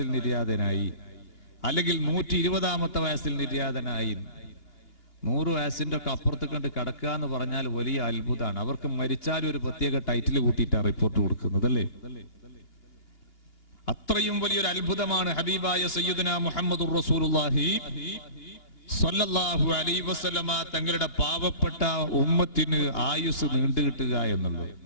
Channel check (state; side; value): late; right; 2.8 ms